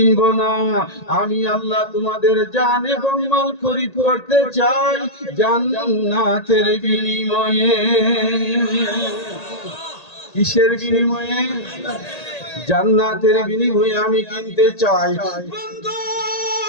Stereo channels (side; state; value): right; late; 1.8 ms